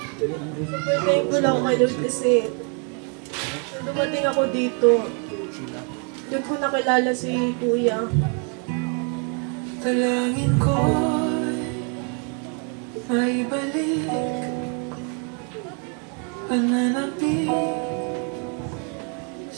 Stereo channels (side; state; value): left; quieter; 38.8 dB